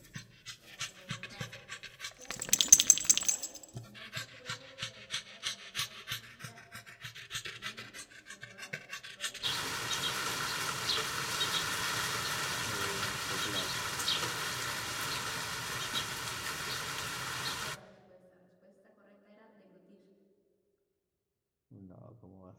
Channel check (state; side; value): identical; both; correlation 1.00